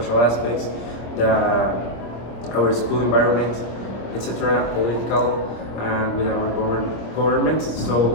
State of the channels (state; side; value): late; right; 26 ms